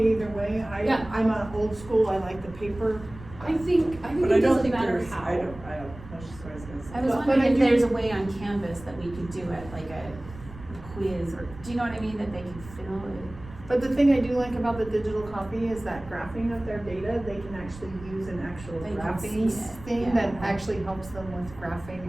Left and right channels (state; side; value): noise; right; rumble, 16 dB below the sound